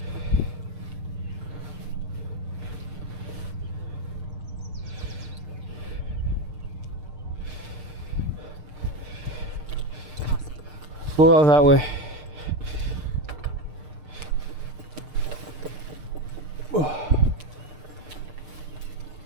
Go out that way.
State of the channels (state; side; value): late; left; 6.6 ms